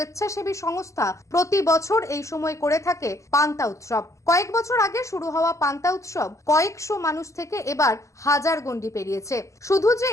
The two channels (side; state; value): right; late; 0.15 ms